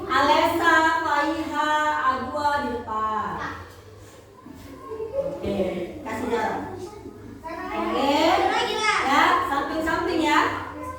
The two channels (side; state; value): both; identical; correlation 1.00